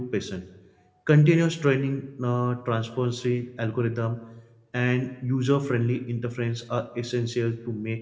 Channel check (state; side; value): identical; both; correlation 1.00